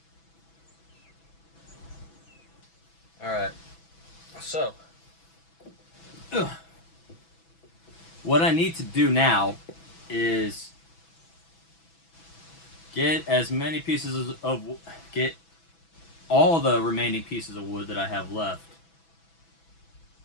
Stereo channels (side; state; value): right; late; 6.1 ms